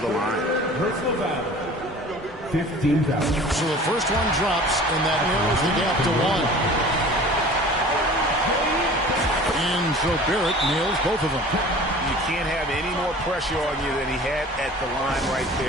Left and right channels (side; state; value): both; normal; correlation 0.43